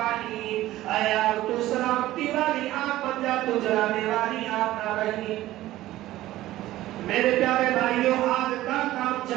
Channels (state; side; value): quieter; left; 15.5 dB